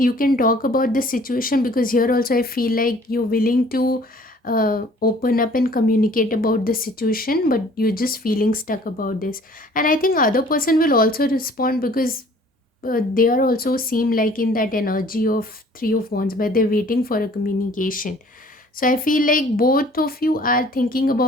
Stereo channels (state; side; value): normal; both; correlation 0.53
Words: can talk about the situation, because here also I feel like you're willing to open up and communicate about the situation, but you're just feeling stuck about this. And I think other person will also respond, because they are also seem like in that energy of three of wands where they're waiting for a communication. So I feel like both of you are thinking